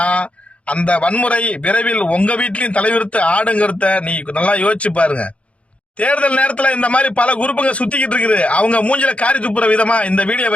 அந்த வன்முறை விரைவில் உங்க வீட்லயும் தலைவிரித்து ஆடுங்கிறத நீ நல்லா யோசிச்சு பாருங்க. தேர்தல் நேரத்துல இந்த மாதிரி பல குரூப்புங்க சுத்திக்கிட்டு இருக்குது, அவங்க மூஞ்சில காரி துப்புற விதமா இந்த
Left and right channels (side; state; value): right; late; 0.062 ms